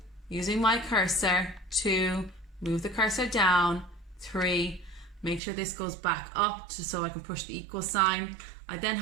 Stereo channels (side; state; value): left; drops out; at 5.4 s